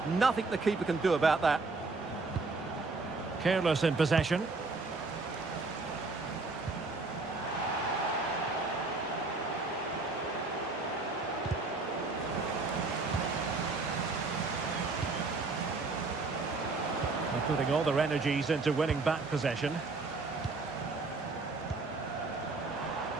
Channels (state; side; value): quieter; left; 3.7 dB